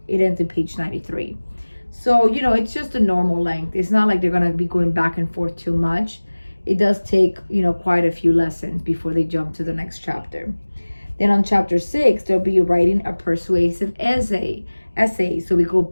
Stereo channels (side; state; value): both; inverted; correlation -1.00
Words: ends in page 93. So, it's just a normal length. It's not like they're going to be going back and forth too much. It does take, quite a few lessons before they jump to the next chapter. Then on chapter 6, they'll be writing a persuasive essay. So we go